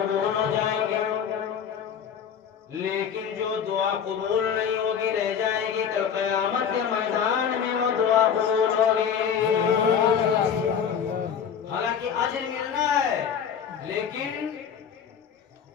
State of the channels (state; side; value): quieter; right; 7.7 dB